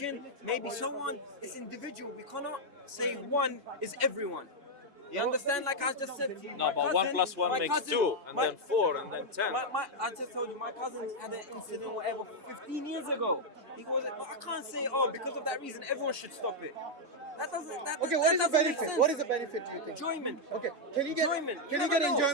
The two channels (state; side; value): late; left; 3.5 ms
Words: Maybe so on. It's individual. We cannot say one is everyone. You understand? Like I just said to you, No, my but cousin, 1 plus 1 my makes cousin, 2, and my- then 4, and then 10. I just told you, my cousin had an incident, whatever, 15 years ago. He goes, but I can't say, because of that reason, everyone should stop it. That doesn't. That, Okay, that what is the doesn't make benefit? sense. What is the benefit? Do you think? Enjoyment? Okay, can you get Enjoyment. Can You you get never know.